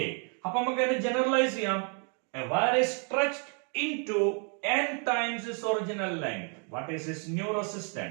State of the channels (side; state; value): left; quieter; 39.8 dB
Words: അപ്പൊ നമുക്ക് അതിനെ ജനറലൈസ് ചെയ്യാം. A wire is stretched into n times its original length. What is its new